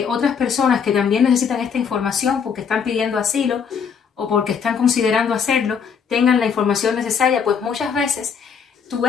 otras personas que también necesitan esta información porque están pidiendo asilo o porque están considerando hacerlo, tengan la información necesaria, pues muchas veces tu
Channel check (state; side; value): quieter; right; 6.7 dB